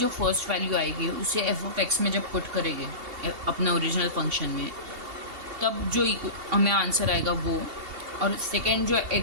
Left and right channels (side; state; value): left; late; 2.7 ms